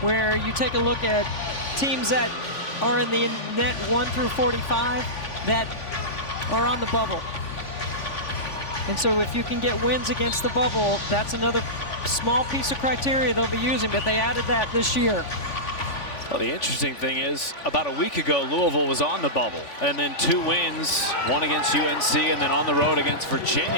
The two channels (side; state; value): right; late; 3.5 ms